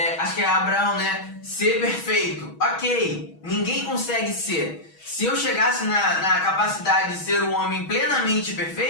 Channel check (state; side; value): late; right; 6.2 ms